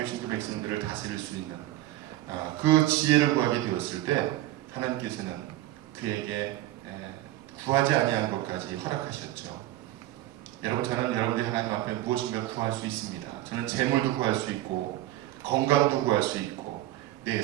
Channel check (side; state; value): left; quieter; 15.4 dB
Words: 그 백성들을 다스릴 수 있는 그 지혜를 구하게 되었을 때 하나님께서는 그에게 구하지 아니한 것까지 허락하셨죠. 여러분, 저는 여러분들이 하나님 앞에 무엇인가 구할 수 있습니다. 저는 재물도 구할 수 있고 건강도 구할 수 있고 내